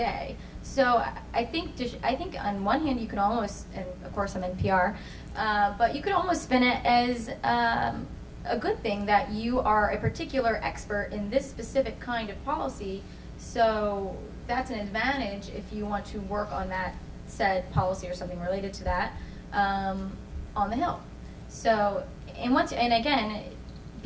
So I think on one hand you can almost, and of course I'm in PR, but you could almost spin it as a good thing that you are a particular expert in this specific kind of policy. So that's an advantage if you want to work on that said policy or something related to that on the Hill. So and again,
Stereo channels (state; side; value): identical; both; correlation 1.00